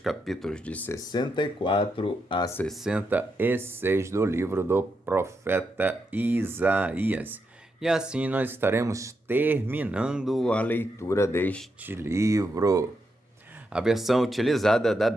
de 64 a 66 do livro do profeta Isaías. E assim nós estaremos terminando a leitura deste livro. A versão utilizada da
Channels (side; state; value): both; normal; correlation 0.83